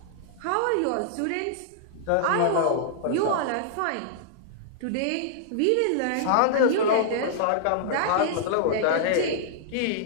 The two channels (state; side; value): different; both; correlation -0.01